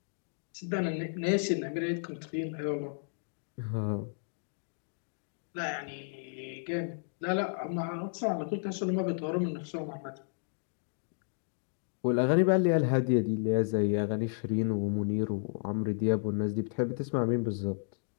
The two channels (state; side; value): silent; right; digital silence